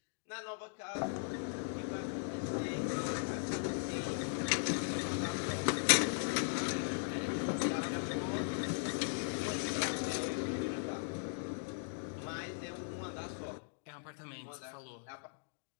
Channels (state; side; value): silent; right; digital silence